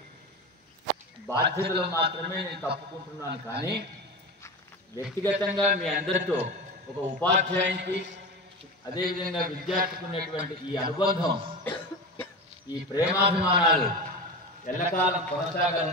బాధ్యతలు మాత్రమే నేను తప్పుకుంటున్నాను. కానీ వ్యక్తిగతంగా మీ అందరితో ఒక ఉపాధ్యాయునికి అదేవిధంగా విద్యార్థికి ఉన్నటువంటి ఈ అనుబంధం, ఈ ప్రేమాభిమానాలు ఎల్లకాలం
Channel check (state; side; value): normal; both; correlation 0.26